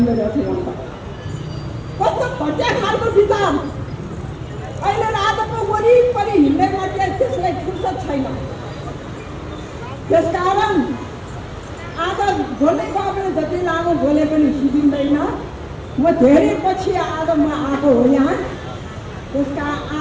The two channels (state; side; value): identical; both; correlation 1.00